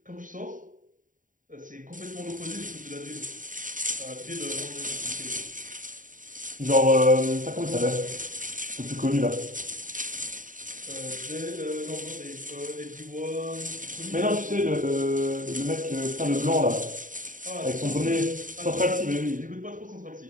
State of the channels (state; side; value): late; left; 0.38 ms